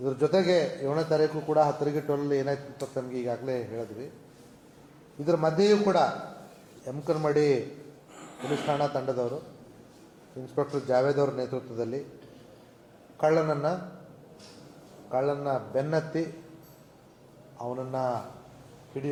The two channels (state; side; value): identical; both; correlation 1.00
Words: ಜೊತೆಗೆ 7ನೇ ತಾರೀಕು ಕೂಡ 10-12 ಏನಾಯ್ತು ಅಂತ ತಮಗೆ ಈಗಾಗಲೇ ಹೇಳಿದ್ವಿ. ಇದರ ಮಧ್ಯೆಯೂ ಕೂಡ ಯಮಕನಮಡಿ ಪೊಲೀಸ್ ಠಾಣಾ ತಂಡದವರು ಇನ್ಸ್ಪೆಕ್ಟರ್ ಜಾವೇದ್ ಅವರ ನೇತೃತ್ವದಲ್ಲಿ ಕಳ್ಳನ್ನ ಬೆನ್ನತ್ತಿ ಅವನನ್ನು